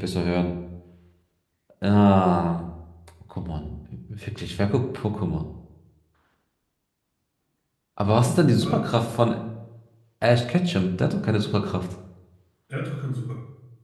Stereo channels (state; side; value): identical; both; correlation 1.00